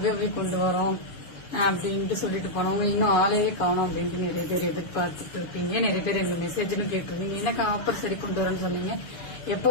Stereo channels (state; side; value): late; right; 6.9 ms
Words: கொண்டு வரோம் அப்படின்ட்டு சொல்லிட்டு போனவங்க இன்னும் ஆளையே காணும் அப்படின்ட்டு நிறைய பேர் எதிர்பார்த்துட்டு இருக்கீங்க. நிறைய பேர் எனக்கு மெசேஜ்னு கேட்டிருந்தீங்க, எனக்கு ஆஃபர் சரி கொண்டு வரோன்னு சொன்னீங்க,